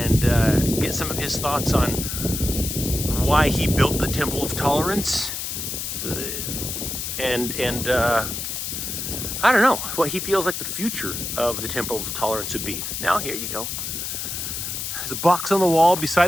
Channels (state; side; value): noise; left; hiss, 4 dB below the sound